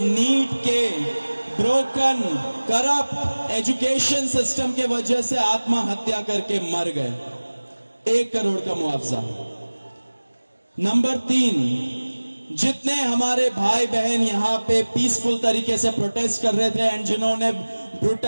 नीट के ब्रोकन करप्ट एजुकेशन सिस्टम के वजह से आत्महत्या करके मर गए, 1 करोड़ का मुआवजा। नंबर 3, जितने हमारे भाई बहन यहाँ पे पीसफुल तरीके से प्रोटेस्ट कर रहे थे एंड जिन्होंने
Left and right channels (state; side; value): inverted; both; correlation -1.00